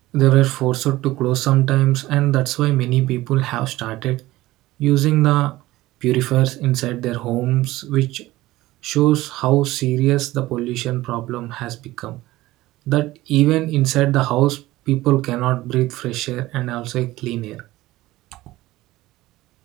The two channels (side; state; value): left; quieter; 17.6 dB